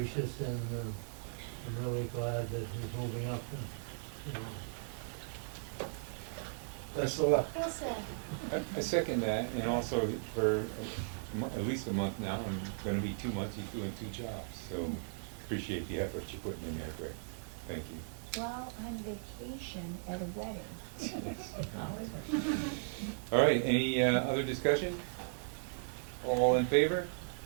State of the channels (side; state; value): left; silent; digital silence